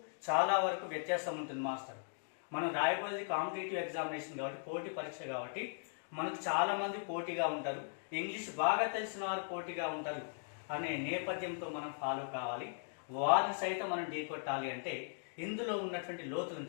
చాలా వరకు వ్యత్యాసం ఉంటుంది మాస్టర్. మనం రాయబోయేది కాంపిటేటివ్ ఎగ్జామినేషన్ కాబట్టి, పోటీ పరీక్ష కాబట్టి మనకు చాలా మంది పోటీగా ఉంటారు, ఇంగ్లీష్ బాగా తెలిసిన వారు పోటీగా ఉంటారు అనే నేపథ్యంతో మనం ఫాలో కావాలి. వారిని సైతం మనం ఢీకొట్టాలి అంటే ఇందులో ఉన్నటువంటి లోతులను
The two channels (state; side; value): silent; right; digital silence